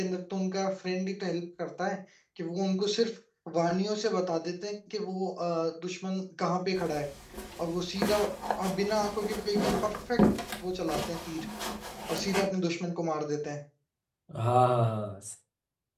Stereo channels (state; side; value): identical; both; correlation 1.00